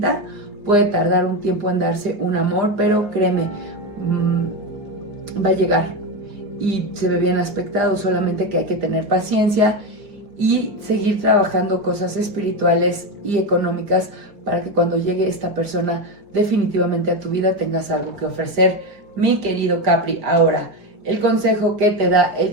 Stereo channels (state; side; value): late; left; 5.0 ms